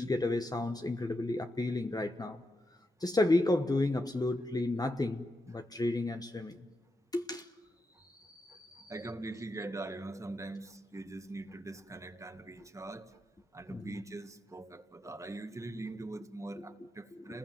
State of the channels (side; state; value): both; normal; correlation 0.85